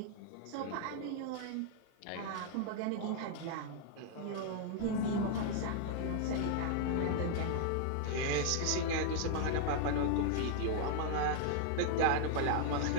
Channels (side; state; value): both; different; correlation 0.00